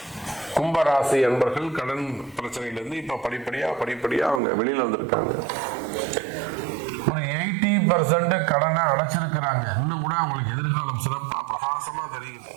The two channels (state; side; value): drops out; left; at 4.4 s